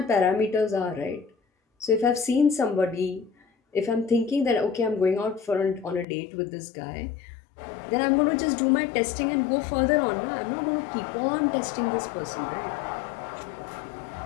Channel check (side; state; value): right; drops out; at 6.1 s